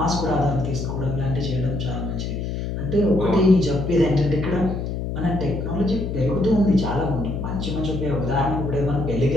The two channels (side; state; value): left; noise; hum, 3 dB below the sound